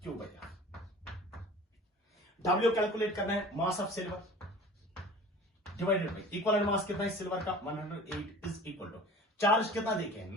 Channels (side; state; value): both; normal; correlation 0.41